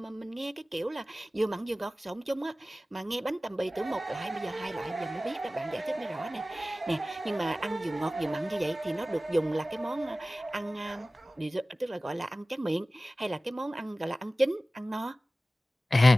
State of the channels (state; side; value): normal; both; correlation 0.97